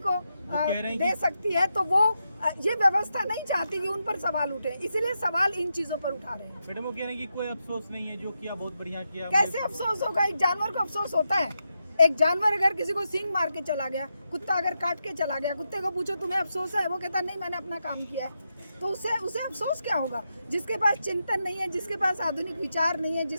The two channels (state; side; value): inverted; both; correlation -0.86